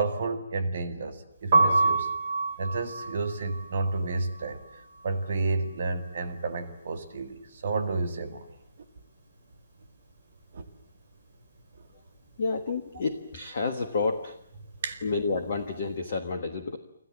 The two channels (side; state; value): both; inverted; correlation -0.78